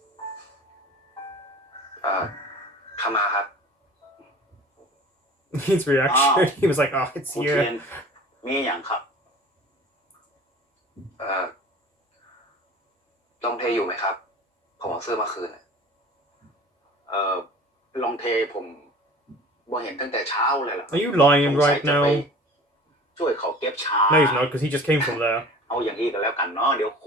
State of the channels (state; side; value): normal; both; correlation 0.42